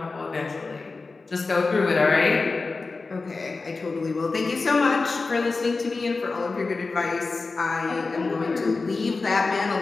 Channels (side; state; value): right; quieter; 3.9 dB